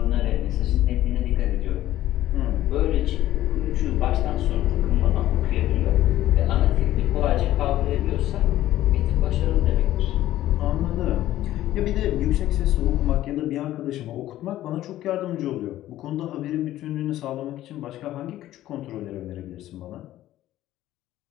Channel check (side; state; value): right; quieter; 14.1 dB